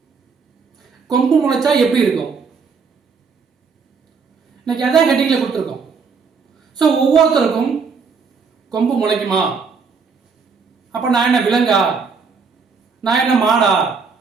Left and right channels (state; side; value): quieter; left; 5.3 dB